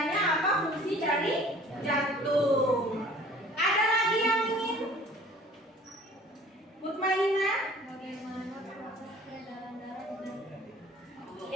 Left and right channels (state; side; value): normal; both; correlation 0.49